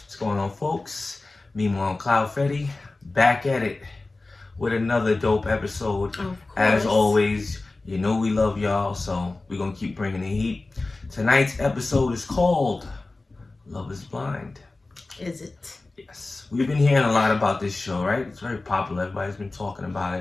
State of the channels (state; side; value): quieter; right; 3.2 dB